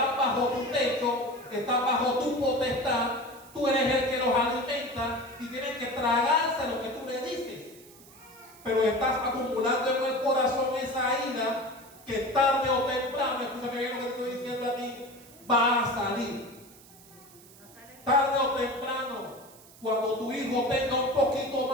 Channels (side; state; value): right; noise; hiss, 22 dB below the sound